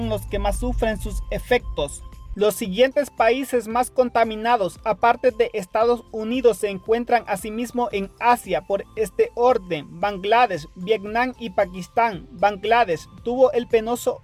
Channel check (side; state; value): both; identical; correlation 1.00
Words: los que más sufren sus efectos. Los siguientes países más contaminados, aparte de Estados Unidos, se encuentran asimismo en Asia por este orden: Bangladesh, Vietnam y Pakistán. Bangladesh tuvo el penoso